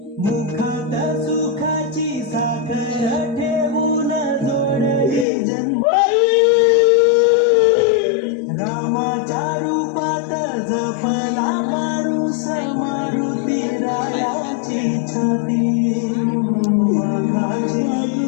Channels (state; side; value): drops out; right; at 5.2 s